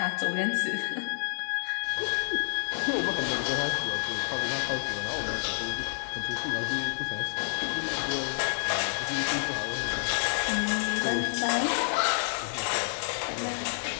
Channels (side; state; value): right; silent; digital silence